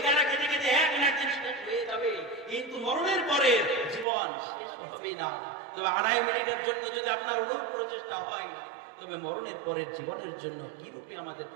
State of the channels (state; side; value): drops out; left; at 4.0 s